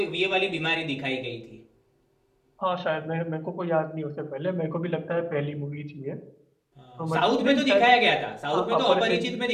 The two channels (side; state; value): both; identical; correlation 1.00